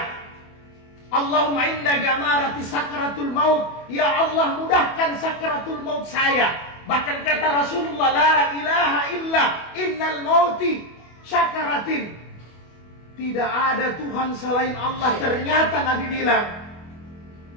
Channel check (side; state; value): right; late; 25 ms